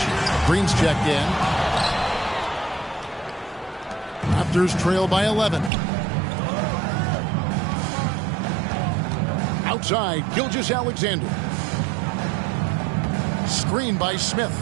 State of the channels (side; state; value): left; drops out; at 5.7 s